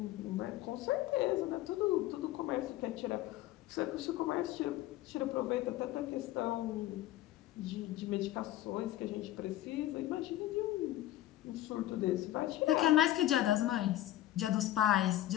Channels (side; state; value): right; quieter; 14.2 dB